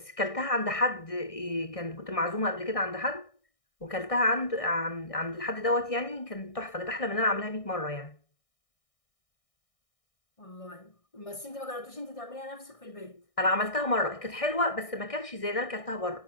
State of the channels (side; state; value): right; late; 1.6 ms